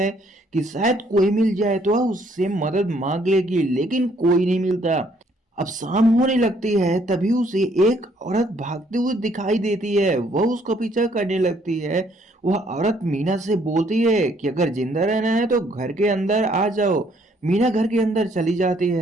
कि शायद कोई मिल जाए तो वह उससे मदद मांग लेगी, लेकिन कोई नहीं मिलता। अब शाम होने लगती है तभी उसे एक औरत भागते हुए दिखाई देती है। वह उसका पीछा करने लगती है। वह औरत मीना से बोलती है कि अगर जिंदा रहना है तो घर के अंदर आ जाओ। मीना घर के अंदर चली जाती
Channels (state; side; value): normal; both; correlation 0.66